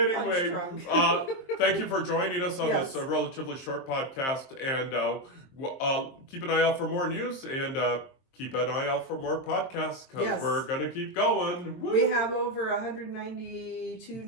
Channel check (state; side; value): late; right; 23 ms